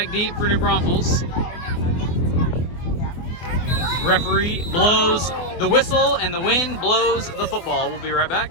deep for New Braunfels. Referee blows the whistle and the wind blows the football. We'll be right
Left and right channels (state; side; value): late; right; 24 ms